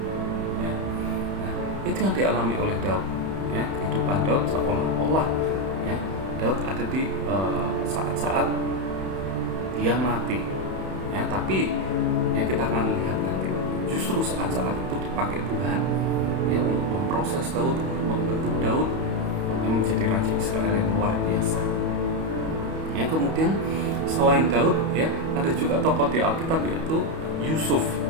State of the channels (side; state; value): left; late; 31 ms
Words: Ya. Nah, itu yang dialami oleh Daud. Ya, kehidupan Daud seolah-olah ya Daud ada di saat-saat dia mati. Ya, tapi ya kita akan lihat nanti justru saat-saat itu dipakai Tuhan ya untuk memproses Daud, untuk membentuk Daud yang menjadi raja Israel yang luar biasa. Ya, kemudian selain Daud ya ada juga tokoh di Alkitab yaitu Yusuf.